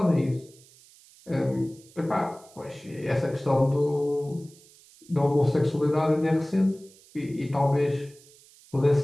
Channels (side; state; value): right; noise; hiss, 26 dB below the sound